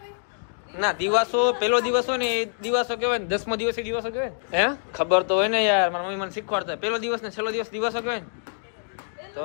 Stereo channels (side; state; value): right; silent; digital silence